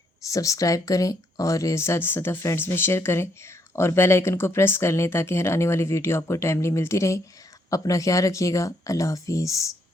सब्सक्राइब करें और ज़्यादा से ज़्यादा फ्रेंड्स में शेयर करें और बेल आइकन को प्रेस कर लें ताकि हर आने वाली वीडियो आपको टाइमली मिलती रहे। अपना ख्याल रखिएगा। अल्लाह हाफिज़।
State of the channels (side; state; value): both; normal; correlation 0.72